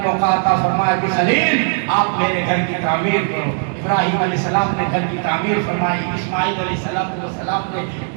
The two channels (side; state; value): left; silent; 59 dB below the other